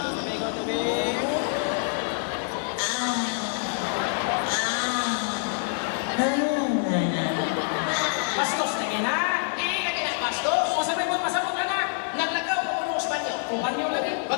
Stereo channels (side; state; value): right; silent; 60 dB below the other